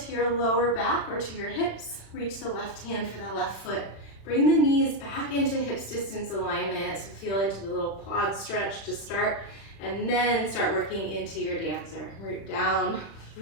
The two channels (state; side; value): late; right; 36 ms